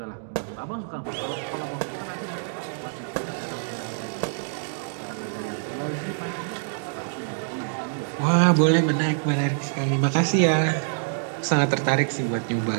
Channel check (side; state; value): left; silent; digital silence